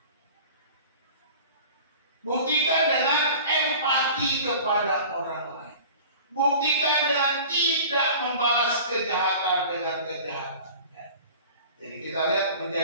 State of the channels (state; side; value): inverted; both; correlation -0.41